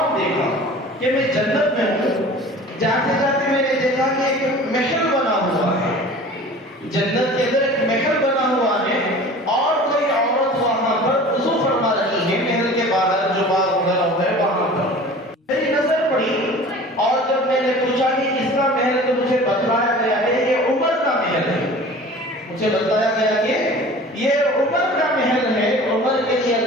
دیکھا کہ میں جنت میں ہوں، جاتے جاتے میں نے دیکھا کہ ایک محل بنا ہوا ہے، جنت کے اندر ایک محل بنا ہوا ہے اور کوئی عورت وہاں پر وضو فرما رہی ہے، محل کے باہر جو باغ وغیرہ ہے وہاں پر میری نظر پڑی، اور جب میں نے پوچھا کہ کس کا محل ہے تو مجھے بتلایا گیا ہے یہ عمر کا محل ہے، مجھے بتایا گیا کہ یہ عمر کا محل ہے، عمر کے لیے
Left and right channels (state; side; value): normal; both; correlation 0.42